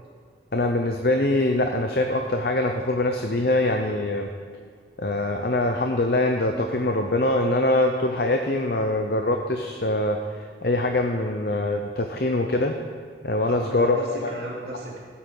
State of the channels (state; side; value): normal; both; correlation 0.22